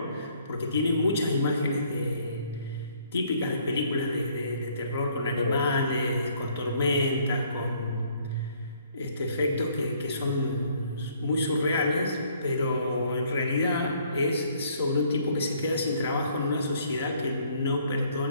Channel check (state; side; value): inverted; both; correlation -0.63